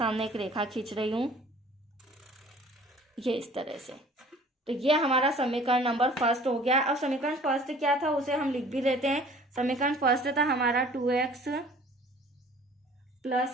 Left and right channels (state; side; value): normal; both; correlation 0.50